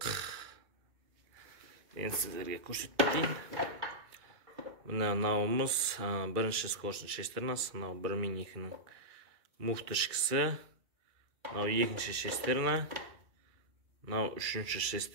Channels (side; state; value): left; late; 2.3 ms